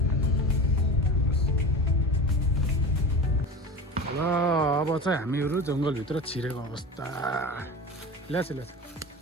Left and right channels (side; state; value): both; normal; correlation 0.31